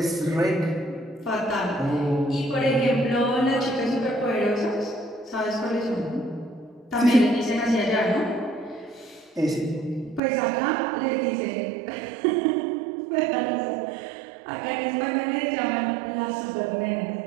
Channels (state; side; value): drops out; left; at 10.2 s